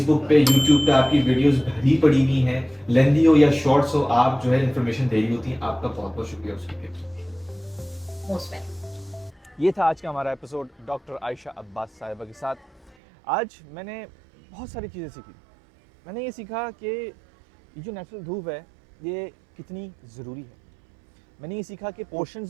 पे, यूट्यूब पे आपकी वीडियोस भरी पड़ी हुई हैं, लेंदी हो या शॉर्ट्स हो, आप जो है इन्फॉर्मेशन दे रही होती हैं। आपका बहुत बहुत शुक्रिया उसके लिए। Most welcome. ये था आज का हमारा एपिसोड डॉक्टर आयशा अब्बास साहिबा के साथ। आज मैंने बहुत सारी चीज़ें सीखी। मैंने ये सीखा कि ये जो नेचुरल धूप है ये कितनी ज़रूरी है। मैंने ये सीखा कि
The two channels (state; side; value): drops out; left; at 13.0 s